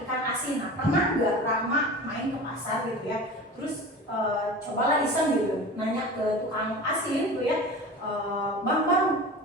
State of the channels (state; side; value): normal; both; correlation 0.34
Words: ikan asin. Nah pernah nggak Rahma main ke pasar gitu ya, terus cobalah iseng gitu, nanya ke tukang asin tuh ya, bang